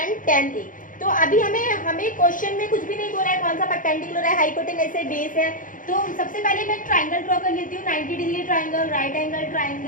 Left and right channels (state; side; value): late; right; 0.39 ms